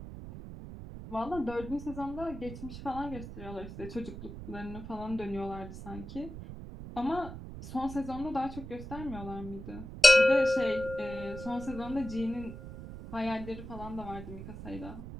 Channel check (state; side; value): noise; right; rumble, 11 dB below the sound